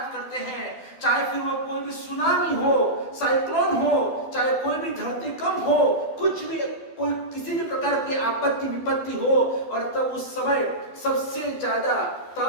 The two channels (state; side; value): late; right; 12 ms